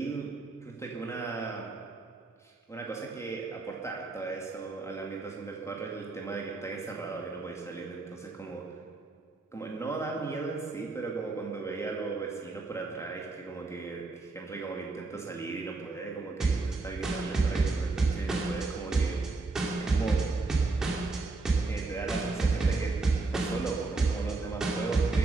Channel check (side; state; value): left; quieter; 3.6 dB